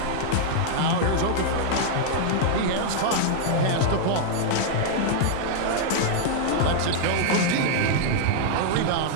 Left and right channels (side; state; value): both; different; correlation -0.01